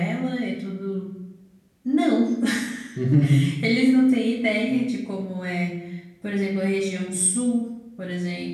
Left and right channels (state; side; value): identical; both; correlation 1.00